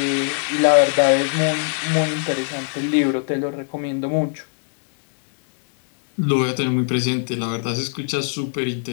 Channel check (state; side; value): silent; right; 64 dB below the other